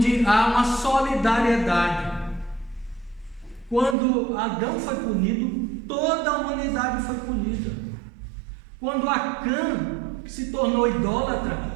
há uma solidariedade. Quando Adão foi punido, toda a humanidade foi punida. Quando Acã se tornou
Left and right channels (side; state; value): left; drops out; at 4.0 s